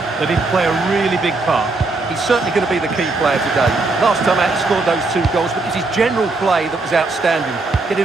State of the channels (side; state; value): left; quieter; 3.5 dB